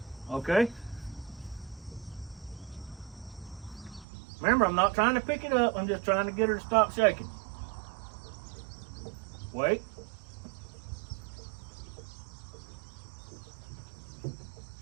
Okay. Remember, I'm not trying to pick it up. I'm just trying to get her to stop shaking. Wait.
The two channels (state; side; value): drops out; left; at 4.0 s